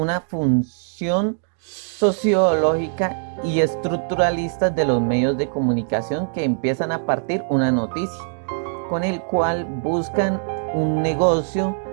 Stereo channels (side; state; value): left; silent; digital silence